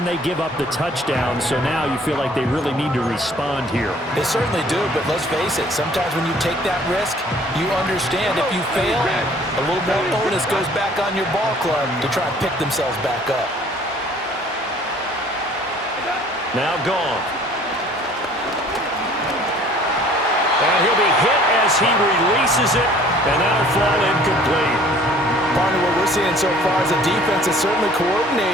they give up the touchdown. So now you feel like they really need to respond here. They certainly do, but let's face it. Sometimes when you take that risk, you understand if you fail, a little more onus goes back on your ball club to try and pick themselves back up. Now gone. And he'll be hit as he releases it. And that'll fall incomplete. Partner, what we're seeing so far is the defense is certainly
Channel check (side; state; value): both; normal; correlation 0.54